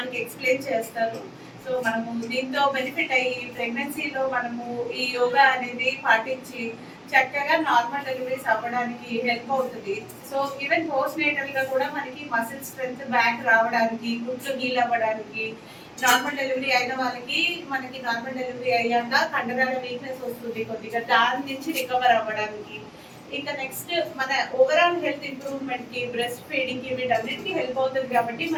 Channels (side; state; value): both; identical; correlation 1.00